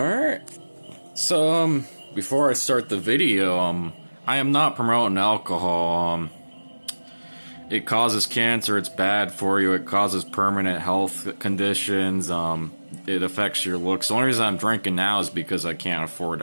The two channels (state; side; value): inverted; both; correlation -1.00